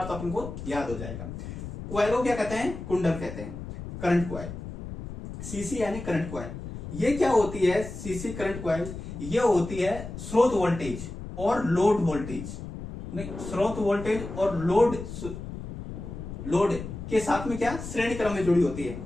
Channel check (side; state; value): left; noise; rumble, 9 dB below the sound